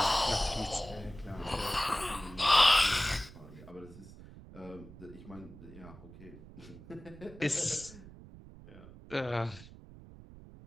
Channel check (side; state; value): right; noise; rumble, 17 dB below the sound